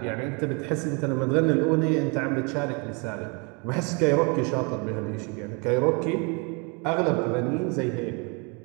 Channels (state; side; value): quieter; left; 32.7 dB